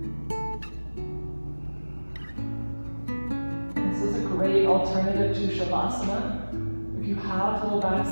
This is a great alternative to Shavasana. If you have low back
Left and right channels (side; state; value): both; inverted; correlation -1.00